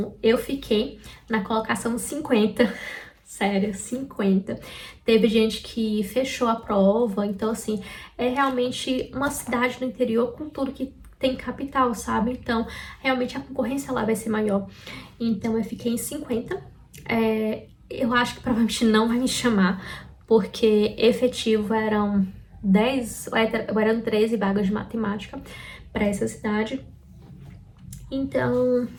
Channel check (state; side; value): identical; both; correlation 1.00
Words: eu fiquei na colocação 50, sério, 50. Teve gente que fechou a prova, então, assim, é realmente uma cidade do interior com tudo que tem capital, sabe? Então, realmente a concorrência lá vai ser maior. Então, eu fiquei em 50. Eu acho que provavelmente não vai me chamar, porque efetivo eram 10, eram 13 vagas de matemática para essa cidade. Então,